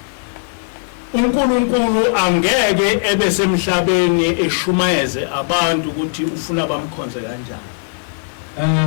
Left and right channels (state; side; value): silent; right; digital silence